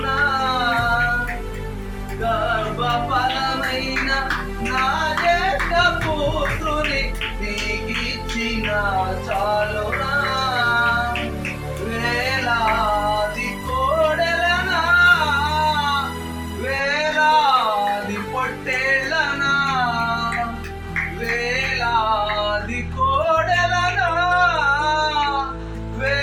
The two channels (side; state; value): both; identical; correlation 1.00